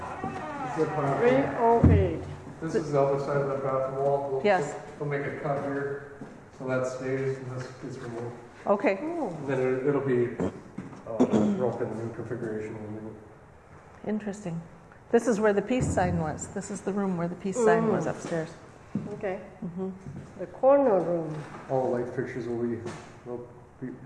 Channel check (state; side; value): identical; both; correlation 1.00